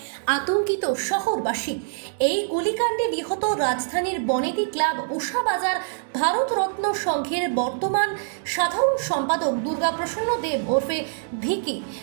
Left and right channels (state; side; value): silent; left; digital silence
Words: আতঙ্কিত শহরবাসী। এই গুলিকাণ্ডে নিহত রাজধানীর বনেদি ক্লাব উষাবাজার ভারতরত্ন সংঘের বর্তমান সাধারণ সম্পাদক দুর্গাপ্রসন্ন দেব ওরফে ভিকি।